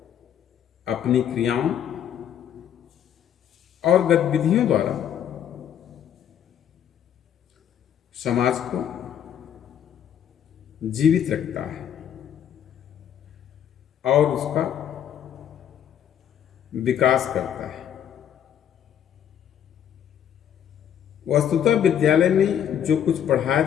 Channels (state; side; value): quieter; right; 9.5 dB